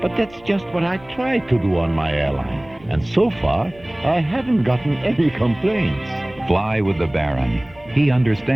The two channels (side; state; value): left; noise; rumble, 24 dB below the sound